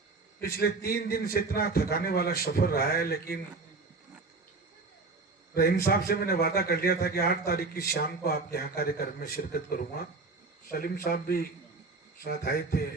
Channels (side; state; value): left; quieter; 3.8 dB